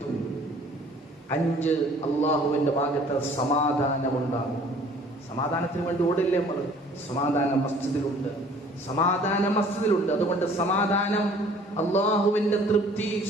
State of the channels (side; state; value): both; normal; correlation 0.53